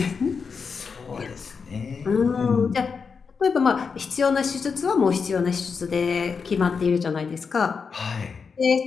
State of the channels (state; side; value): quieter; right; 5.5 dB